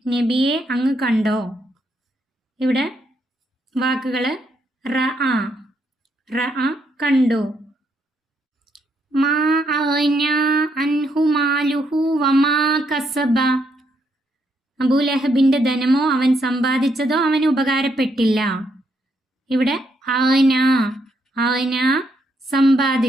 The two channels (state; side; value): normal; both; correlation 0.76